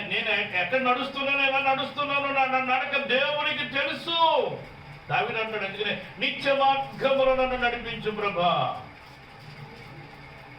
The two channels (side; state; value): both; identical; correlation 1.00